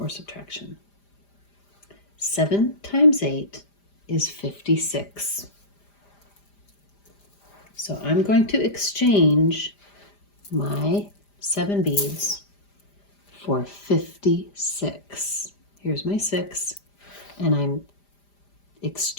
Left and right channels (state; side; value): late; right; 5.0 ms